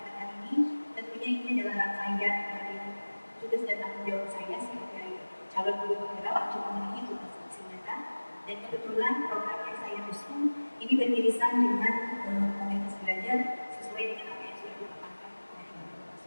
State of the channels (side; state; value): both; inverted; correlation -1.00